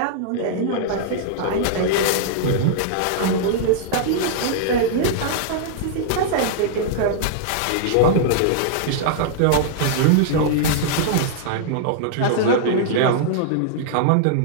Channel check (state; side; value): different; both; correlation -0.01